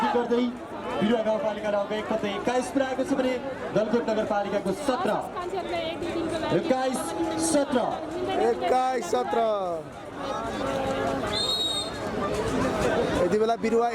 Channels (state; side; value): identical; both; correlation 1.00